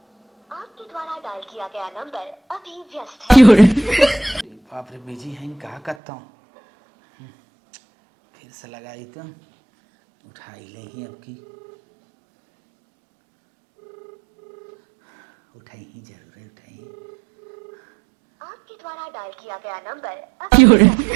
आपके द्वारा डायल किया गया नंबर अभी व्यस्त है। बाप रे बिजी है, कहा करता हूँ, फिर से लगाई तो उठाई ले ही, अब की उठाई ही, जरूर है उठाई। आपके द्वारा डायल किया गया नंबर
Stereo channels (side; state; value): left; drops out; at 6.0 s